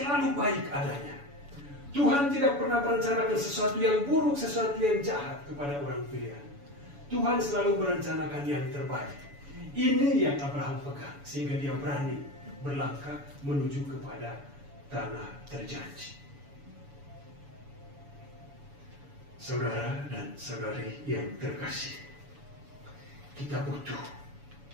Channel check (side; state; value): left; late; 7.0 ms